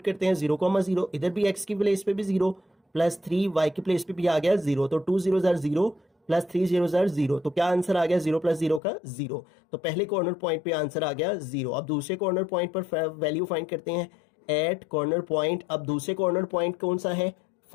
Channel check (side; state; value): right; drops out; at 8.8 s